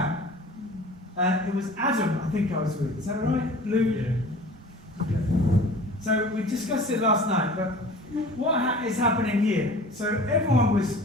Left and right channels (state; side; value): normal; both; correlation 0.43